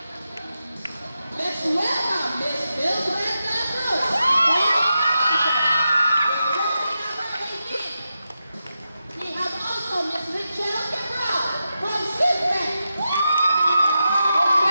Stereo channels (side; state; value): both; inverted; correlation -0.89